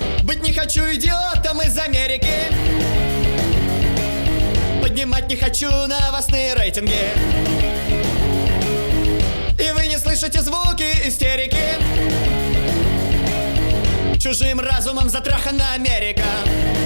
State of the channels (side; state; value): both; inverted; correlation -1.00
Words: Быть не хочу идиотом из Америки. Поднимать не хочу новостные рейтинги. И вы не слышите звуки истерики. Чужим разумом затрахана Америка.